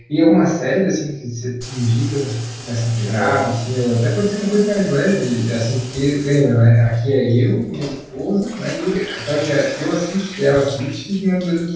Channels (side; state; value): both; identical; correlation 1.00